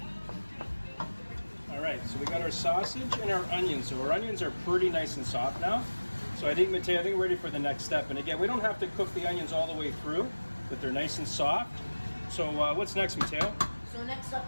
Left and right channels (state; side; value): inverted; both; correlation -1.00